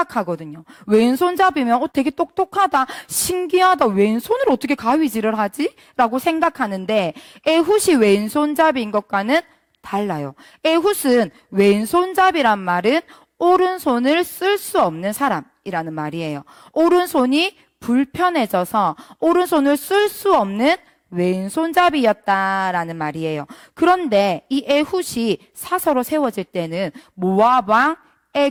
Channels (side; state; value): both; identical; correlation 1.00